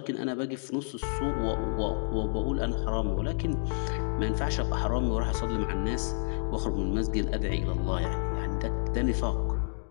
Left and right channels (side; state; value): right; silent; digital silence